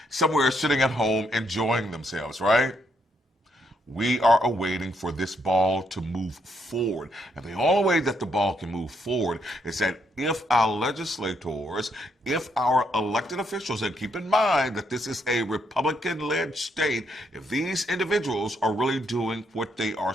somewhere sitting at home enjoying themselves, right? We are awaiting for this ball to move forward. And the only way that the ball can move forward is that if our legislators, if our elected officials, and keep in mind that this is a Republican-led state, if these individuals are really doing what they are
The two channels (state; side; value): normal; both; correlation 0.75